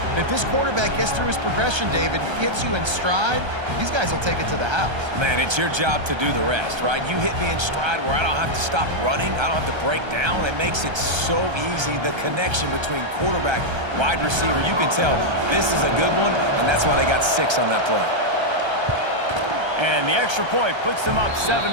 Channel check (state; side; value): late; left; 1.3 ms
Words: And if this quarterback gets through his progression, David, hits you in stride, these guys will take it to the house. Man, it's your job to do the rest, right? You hit me in stride where I don't have to stop running. I don't have to break down. It makes it so easy, the connection between quarterback, wide receiver. You can tell this is a good one, and that's why they got 6 on that play. And the extra point puts them up 7-2.